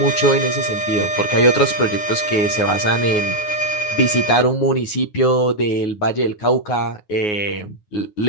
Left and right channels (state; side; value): late; right; 9.5 ms